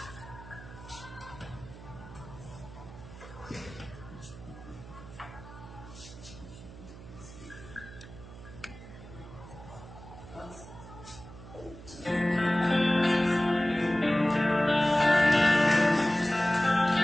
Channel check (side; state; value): right; noise; hum, 16 dB below the sound